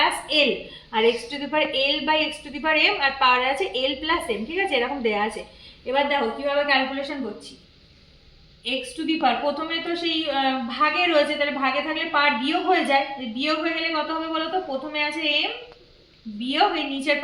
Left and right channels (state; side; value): identical; both; correlation 1.00